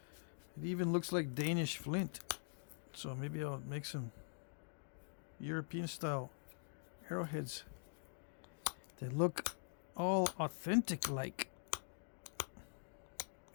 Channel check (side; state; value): right; silent; digital silence